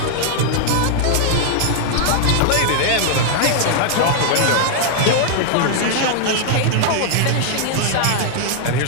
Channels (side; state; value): both; different; correlation -0.01